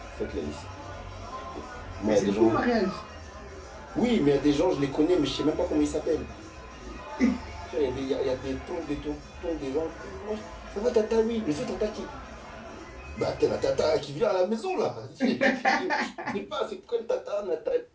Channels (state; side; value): identical; both; correlation 1.00